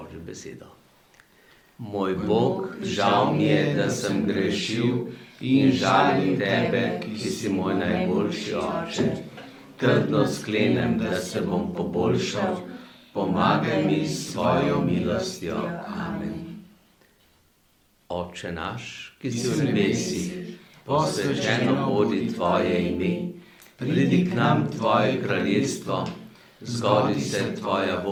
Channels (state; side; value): identical; both; correlation 1.00